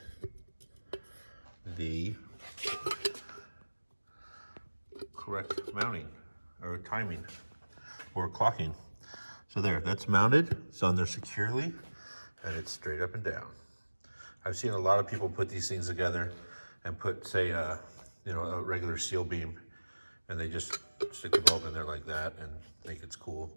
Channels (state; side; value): inverted; both; correlation -1.00